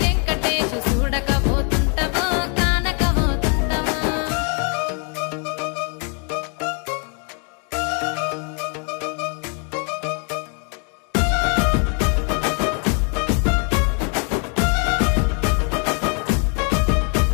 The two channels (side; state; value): right; quieter; 38.9 dB